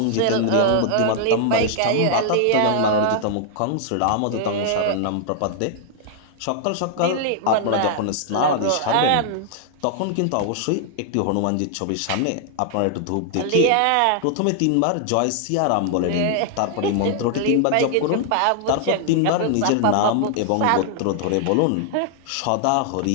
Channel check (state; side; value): different; both; correlation -0.01